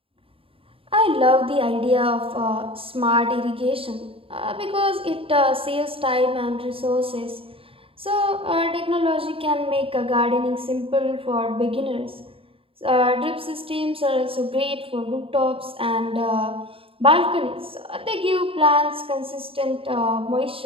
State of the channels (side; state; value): left; late; 0.27 ms